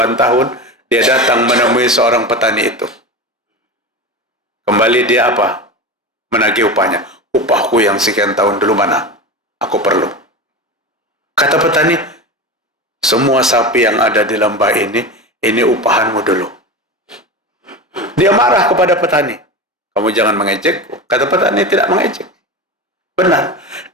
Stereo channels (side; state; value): both; normal; correlation 0.25